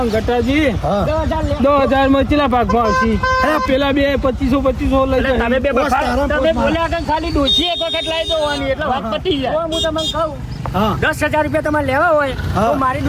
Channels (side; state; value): both; identical; correlation 1.00